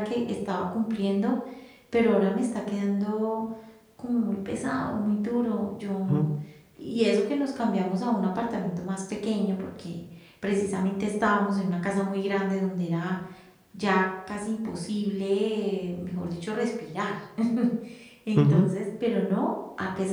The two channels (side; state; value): both; identical; correlation 1.00